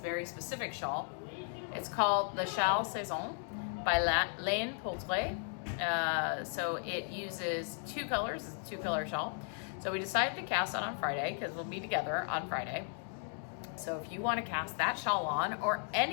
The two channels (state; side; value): silent; right; 54 dB below the other